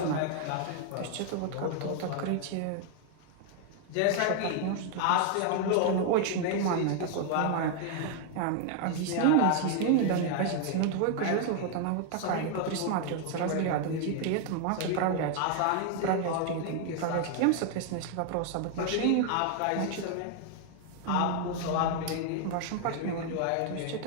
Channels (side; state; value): both; different; correlation 0.00